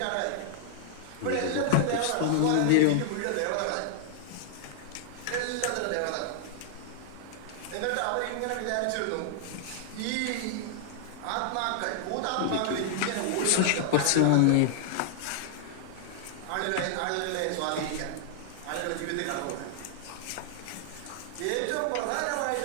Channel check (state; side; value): different; both; correlation -0.01